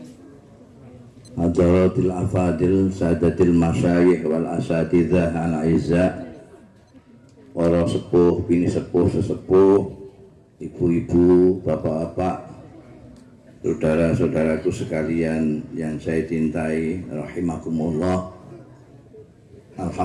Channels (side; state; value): both; identical; correlation 1.00